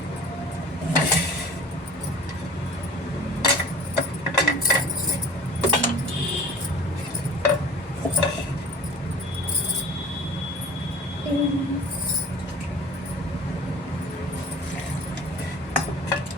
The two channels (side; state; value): both; normal; correlation 0.42